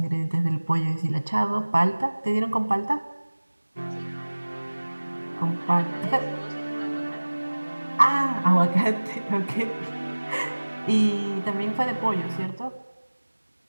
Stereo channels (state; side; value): inverted; both; correlation -1.00